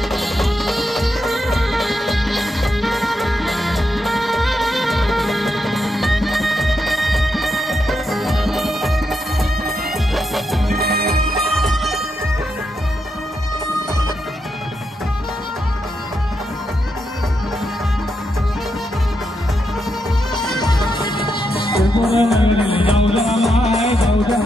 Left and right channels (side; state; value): both; normal; correlation 0.83